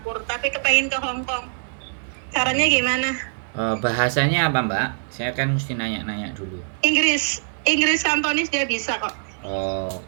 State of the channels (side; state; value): left; silent; digital silence